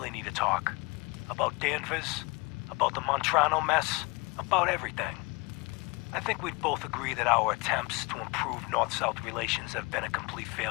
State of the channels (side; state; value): right; quieter; 26.9 dB